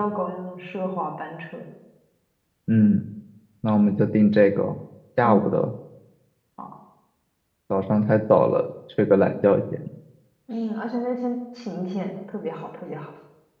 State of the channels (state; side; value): identical; both; correlation 1.00